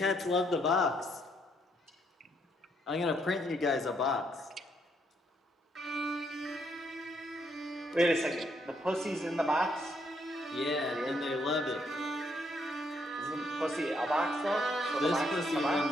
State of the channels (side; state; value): both; normal; correlation 0.73